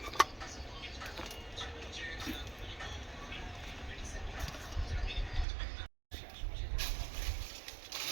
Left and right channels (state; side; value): drops out; left; at 5.5 s